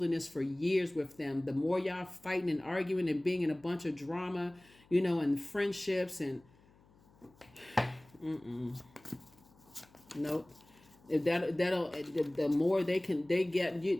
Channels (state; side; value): noise; left; hum, 29 dB below the sound